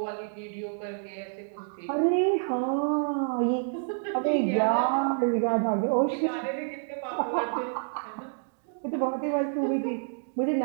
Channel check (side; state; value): left; silent; digital silence